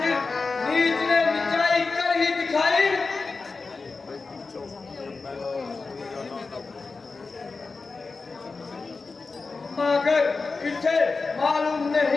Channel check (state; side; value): quieter; right; 4.1 dB